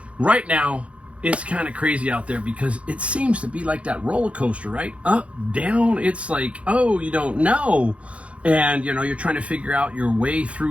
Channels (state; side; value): late; left; 0.062 ms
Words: Right now, it's kind of crazy out there because it seems to be like that roller coaster, right? Up, down, it's like, oh, you don't know. And, you know, you're trying to figure out your way